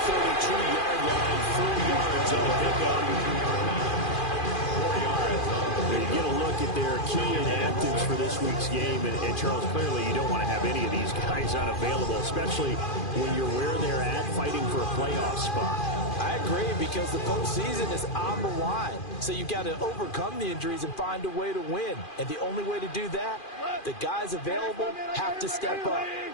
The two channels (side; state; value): right; late; 2.4 ms